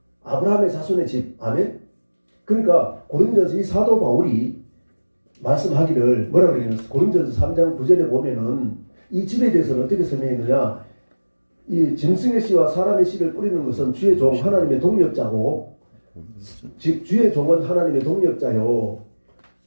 아브라함의 자손의 집. 아멘. 그러니까 고린도서 이 사도 바울이 말씀하기를 뭐라고 그러냐면 고린도서 3장 9절에 보면은 이 집에 대해서는 어떻게 설명했느냐? 이 짐승의 씨와 사람의 씨를 뿌리는 것은 주의 종 하나님의 동력자고, 즉 주의 종은 하나님의 동력자요,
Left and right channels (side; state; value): both; inverted; correlation -1.00